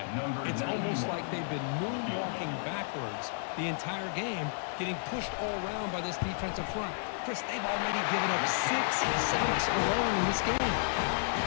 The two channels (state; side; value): silent; right; digital silence